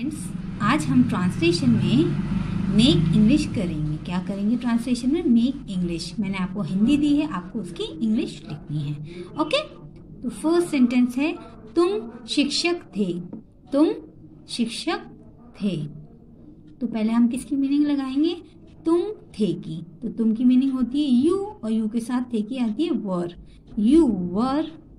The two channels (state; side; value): identical; both; correlation 1.00